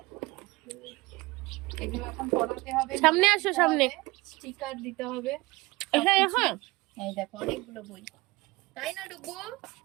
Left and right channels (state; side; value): quieter; left; 22.2 dB